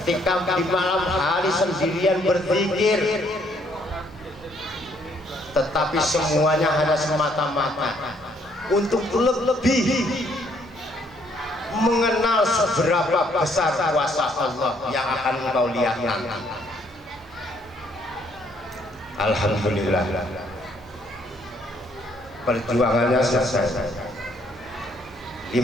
di malam hari sendirian berzikir, tetapi semuanya hanya semata-mata untuk lebih mengenal seberapa besar kuasa Allah yang akan engkau lihat nanti. Alhamdulillah, perjuangannya selesai. 15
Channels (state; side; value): normal; both; correlation 0.67